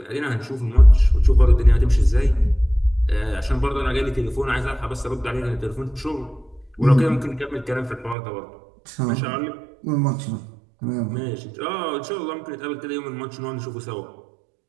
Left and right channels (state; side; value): drops out; left; at 8.2 s